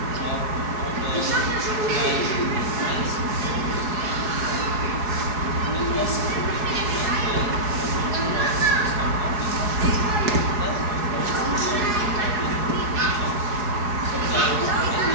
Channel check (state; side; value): late; left; 4.7 ms